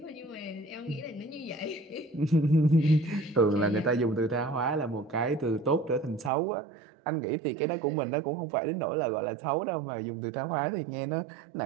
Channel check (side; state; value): left; drops out; at 6.3 s